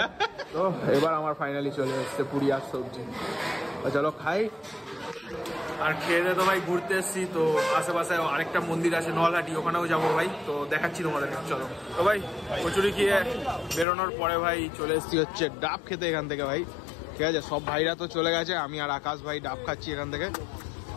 তো এবার আমার ফাইনালি চলে এসছে পুরি আর সবজি। চলো খাই। আর খেয়ে দিয়ে তো ভাই ঘুরতে এসছি, তো আশেপাশে আরেকটা মন্দির আছে নলহাটি, ওখানেও যাবো ভাই, তো দেখাচ্ছি তোমাদের। চলো তো ভাই, কচুরি খেয়ে বেরোনোর পরে ভাই চলে এসছি হচ্ছে ডাব খেতে এখান থেকে ভাই। ঠিক আছে, সব ভাইরা তো চলে গেছে, আমি আর আকাশ ভাই ডাব খাচ্ছি এখান থেকে।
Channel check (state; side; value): drops out; right; at 13.9 s